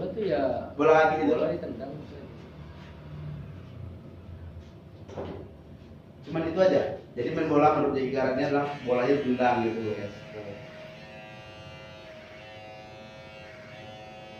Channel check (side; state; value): both; identical; correlation 1.00